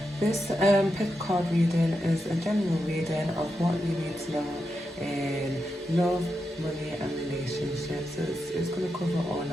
This pick card reading is a general reading of what you need to know in love, money and relationships. So it's going to cover all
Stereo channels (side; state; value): both; normal; correlation 0.87